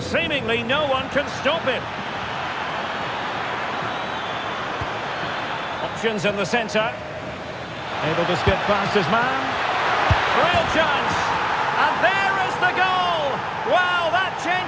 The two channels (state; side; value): identical; both; correlation 1.00